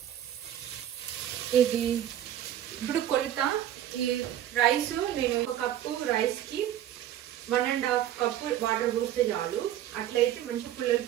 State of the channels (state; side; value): quieter; left; 11.7 dB